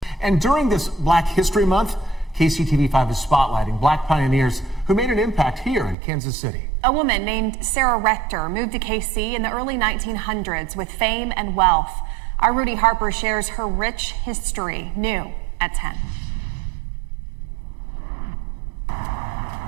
And during this Black History Month, KCTV5 is spotlighting Black pioneers who made an impact here in Kansas City. A woman named Sarah Rector moved to KC in the early 1900s with fame and wealth. Our Rudy Harper shares her rich history, new at 10.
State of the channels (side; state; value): left; drops out; at 6.0 s